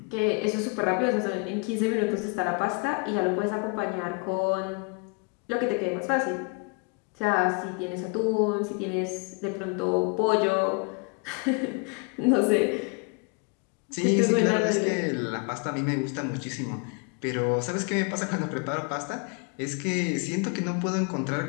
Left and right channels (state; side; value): quieter; right; 32.8 dB